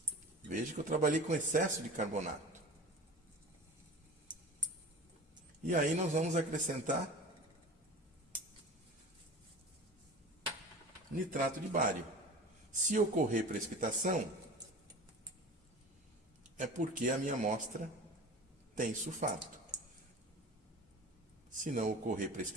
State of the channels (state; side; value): normal; both; correlation 0.36